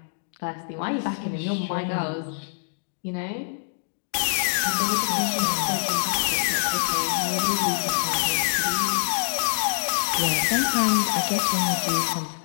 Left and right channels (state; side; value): silent; right; digital silence